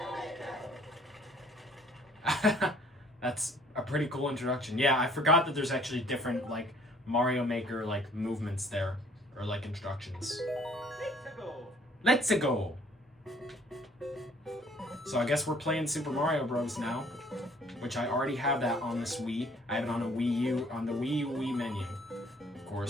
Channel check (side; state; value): both; normal; correlation 0.58